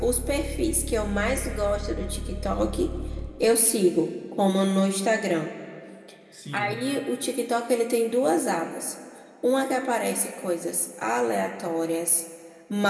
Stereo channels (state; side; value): identical; both; correlation 1.00